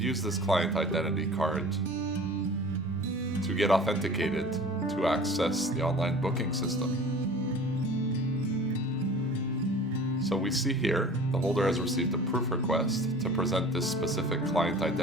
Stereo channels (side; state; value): both; normal; correlation 0.42